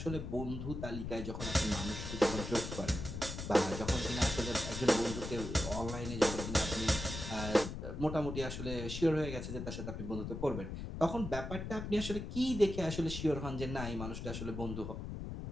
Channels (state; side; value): noise; left; rumble, 6 dB below the sound